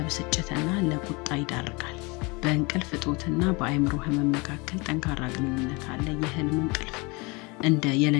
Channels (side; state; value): right; quieter; 27.4 dB